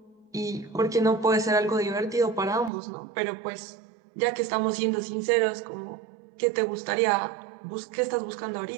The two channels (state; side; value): drops out; left; at 2.7 s